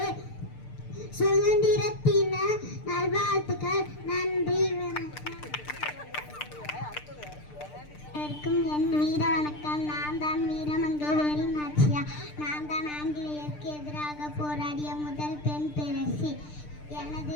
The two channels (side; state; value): right; late; 6.7 ms